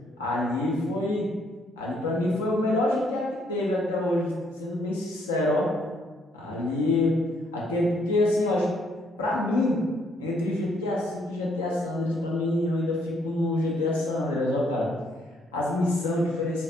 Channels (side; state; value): both; normal; correlation 0.69